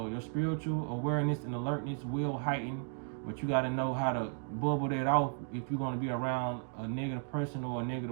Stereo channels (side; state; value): left; silent; 55 dB below the other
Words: spiritual awareness and alertness will heighten, but you got to know how to bubble that off if you're going to be around a negative person or a